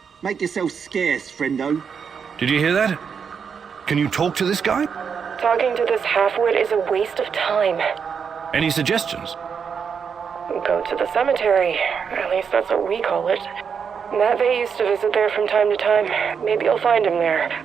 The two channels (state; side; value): quieter; left; 6.6 dB